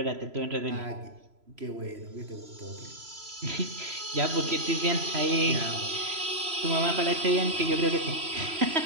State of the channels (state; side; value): late; left; 3.0 ms